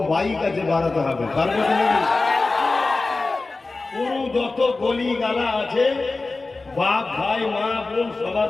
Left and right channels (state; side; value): quieter; right; 3.5 dB